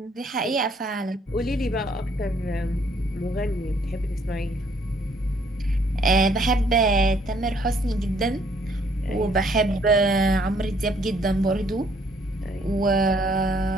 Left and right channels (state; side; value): normal; both; correlation 0.65